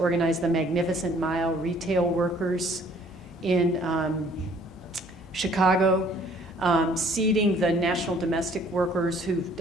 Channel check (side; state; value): both; normal; correlation 0.58